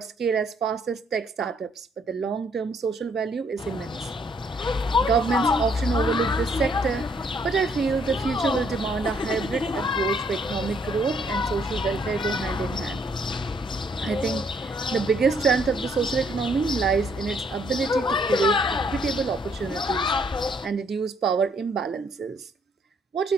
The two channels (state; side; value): normal; both; correlation 0.67